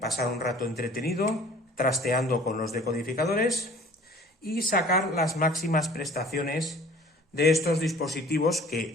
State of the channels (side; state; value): both; normal; correlation 0.49